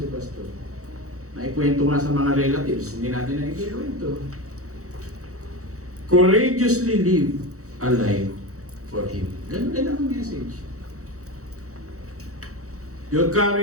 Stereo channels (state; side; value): late; left; 0.65 ms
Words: Pastor. Naikwento nga sa mga relatives, hindi natin naikwento. Courageously live a life for Him. Ganun din ang message. Your